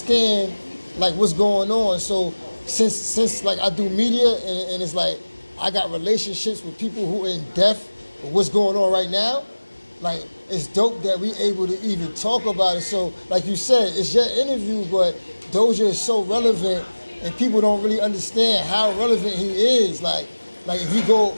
like what's going on. So since like I do media and it's like I got relationships with people who are in depth with what's going on right now, like it's dope that we able to even talk about it. So like you said, it's your interview, but Doja is so relevant and people don't really understand how relevant he is. Like if you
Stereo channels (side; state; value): both; inverted; correlation -1.00